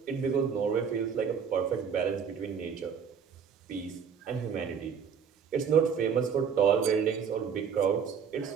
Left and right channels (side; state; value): left; quieter; 6.9 dB